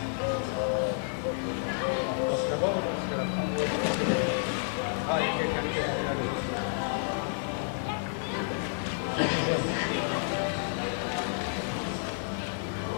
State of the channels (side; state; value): right; silent; digital silence